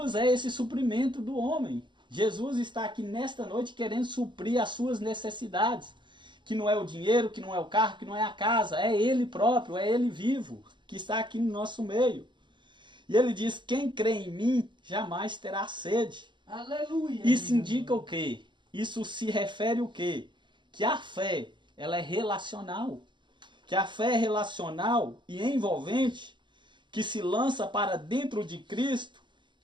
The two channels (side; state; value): left; late; 0.23 ms